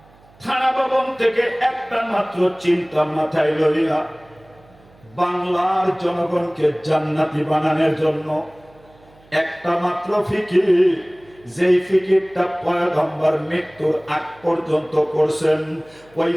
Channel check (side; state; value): right; noise; hum, 28 dB below the sound